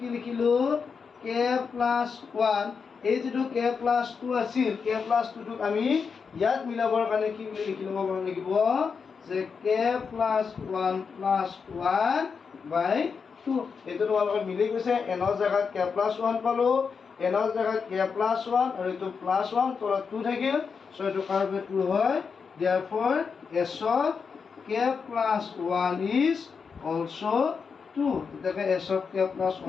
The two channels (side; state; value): right; quieter; 5.7 dB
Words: লিখিলো k plus 1 এই যেটো k plus 2 আছিল k plus 2 টোক আমি ইয়াত মিলাবৰ কাৰণে কি বুলি লিখি লব লাগিব যে k plus 1 plus 1 by 2 এটো তোমালোকৰ মিলি গৈছে n ৰ জায়গাত k plus 1 পালো n ৰ জায়গাত k plus 1 আৰু এটো plus 1 তলত 2 থাকিল সো এটো কাৰবে 2 হয় therefore s of k plus 1 is also 2 এটাকে s of k plus